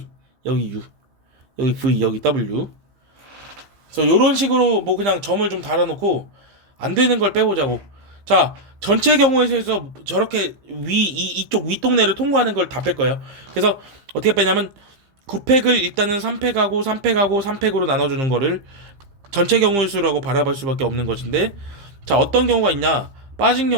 여기 U, 여기 V, 여기 W. 그래서 요런 식으로 뭐 그냥 점을 좀 달아놓고 안 되는 걸 빼보자고. 자, 전체 경우에서 저렇게 이쪽 윗동네를 통과하는 걸 다 뺄 거예요. 그래서 어떻게 빼냐면 9팩을 일단은 3팩하고 3팩하고 3팩으로 나눠주는 거를 전체 경우의 수라고 바라볼 수밖에 없는 것인데, 자, 어떤 경우가 있냐? 빠진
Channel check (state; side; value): late; left; 15 ms